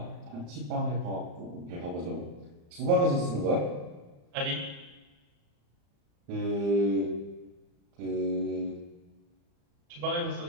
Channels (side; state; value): left; late; 35 ms